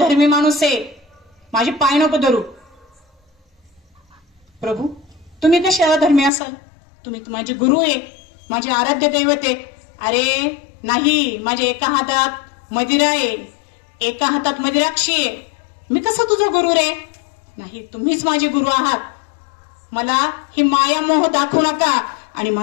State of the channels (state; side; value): drops out; right; at 6.3 s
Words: माणूस आहे, माझे पाय नको धरू. प्रभू तुम्ही कसे अधर्मी असाल, तुम्ही माझे गुरु आहे, माझे आराध्य दैवत आहे. अरे नाही, माझ्या एका हातात मदिरा आहे, एका हातात मदिराक्षी आहे, मी कसं तुझा गुरु रे. नाही, तुम्हीच माझे गुरु आहात. मला ही माया मोह दाखवू नका आणि